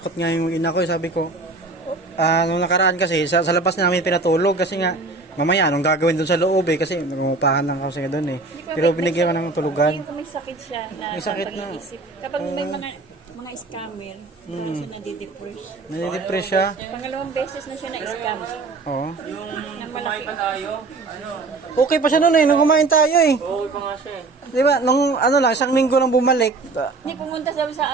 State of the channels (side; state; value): left; quieter; 3.6 dB